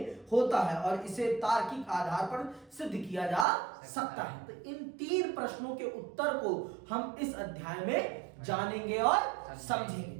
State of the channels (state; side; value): drops out; left; at 3.5 s